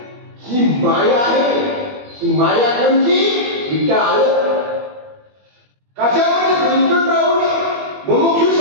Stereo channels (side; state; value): left; late; 21 ms